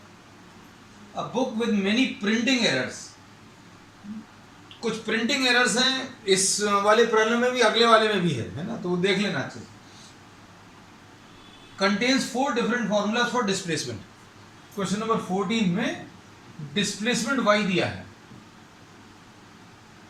a book with many printing errors. कुछ प्रिंटिंग एरर्स हैं इस वाले प्रॉब्लम में भी, अगले वाले में भी है ना। तो वो देख लेना अच्छे से। Contains 4 different formulas for displacement. Question number 14 में डिस्प्लेसमेंट y दिया है।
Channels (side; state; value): both; identical; correlation 1.00